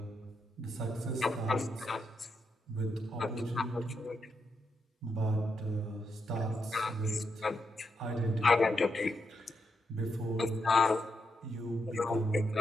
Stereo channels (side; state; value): both; normal; correlation 0.83